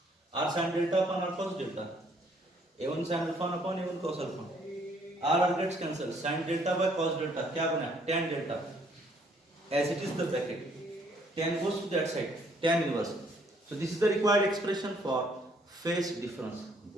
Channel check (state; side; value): normal; both; correlation 0.65